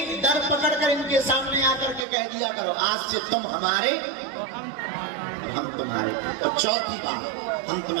दर पकड़कर इनके सामने आकर के कह दिया करो, आज से तुम हमारे, हम तुम्हारे। और चौथी बात, हम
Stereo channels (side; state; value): left; drops out; at 2.1 s